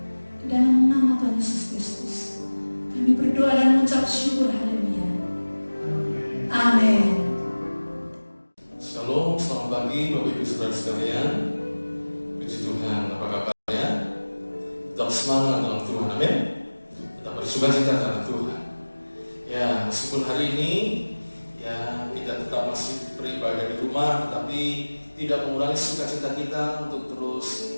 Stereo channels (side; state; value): both; inverted; correlation -1.00